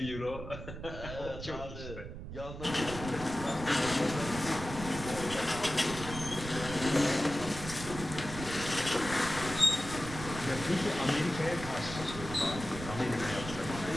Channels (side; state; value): right; noise; rumble, 9 dB below the sound